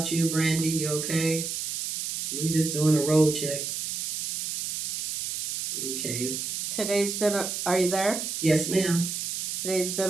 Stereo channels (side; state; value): right; noise; hiss, 3 dB below the sound